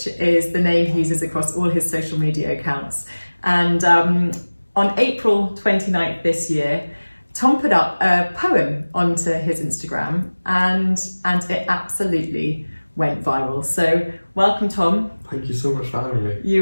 is the name he uses across all his social media accounts. And on April 29th this year, Tom put up a poem onto his Instagram and it absolutely went viral. So welcome, Tom. Thank you so much for having me.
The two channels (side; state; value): both; inverted; correlation -1.00